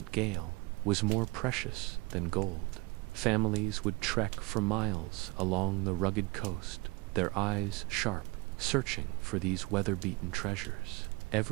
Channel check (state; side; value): quieter; left; 25.5 dB